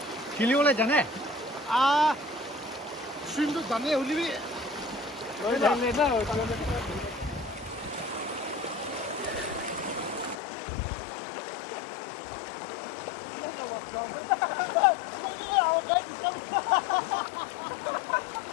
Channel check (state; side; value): drops out; right; at 10.4 s